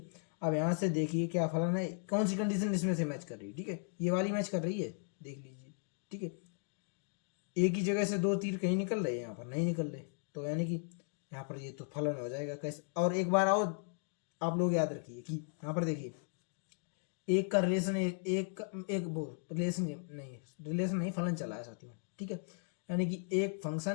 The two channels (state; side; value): silent; right; 53 dB below the other